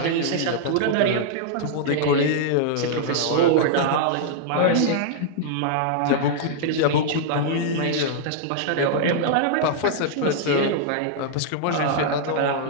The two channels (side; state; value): both; different; correlation -0.01